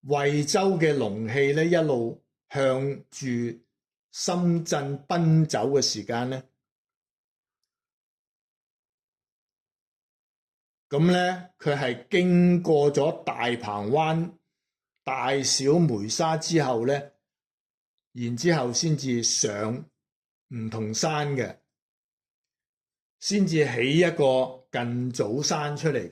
惠州嘅龍氣呢一路向住深圳奔走嘅時間呢，咁呢佢係經過咗大鵬灣、大小梅沙之後呢，然之後先至上梧桐山嘅，先至起一個近早山出嚟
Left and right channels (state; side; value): identical; both; correlation 1.00